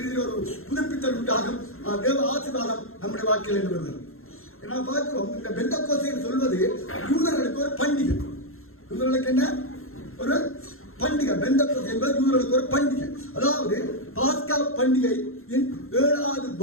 ரீதியில் ஒரு புதுப்பித்தல் உண்டாகும், தேவ ஆசீர்வாதம் நம்முடைய வாழ்க்கையில் என்று வருகிறது. நான் பார்க்கிறோம், இந்த பெந்தெக்கோஸ்தே சொல்வது யூதர்களுக்கு ஒரு பண்டிகை. யூதர்களுக்கு என்ன ஒரு பண்டிகை? பெந்தெக்கோஸ்தே என்பது யூதர்களுக்கு ஒரு பண்டிகை. அதாவது பாஸ்கா பண்டிகையின் 7வது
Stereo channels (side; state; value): right; late; 0.61 ms